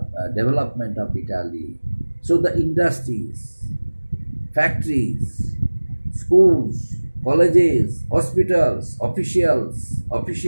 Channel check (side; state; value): both; inverted; correlation -1.00